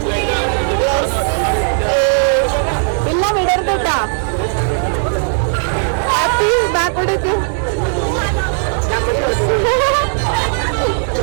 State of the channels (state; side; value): silent; left; digital silence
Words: ഇല്ല വിടരുതട്ടാ ബാക്കോട്ടേക്ക്